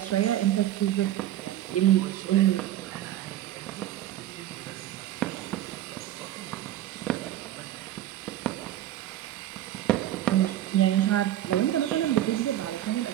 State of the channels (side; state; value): left; quieter; 13.0 dB